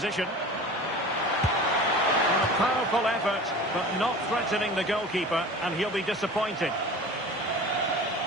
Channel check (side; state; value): both; normal; correlation 0.38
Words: And a powerful effort, but not threatening the goalkeeper, and he'll be disappointed.